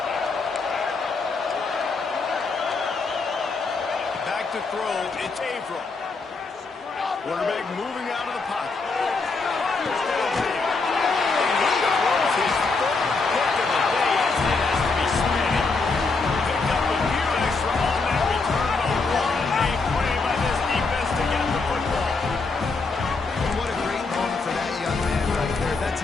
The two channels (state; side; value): quieter; right; 4.1 dB